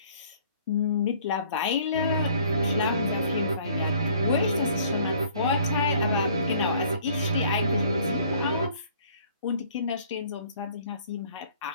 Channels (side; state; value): both; inverted; correlation -0.56